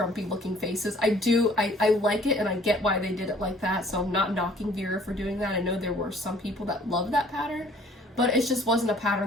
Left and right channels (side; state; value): both; normal; correlation 0.56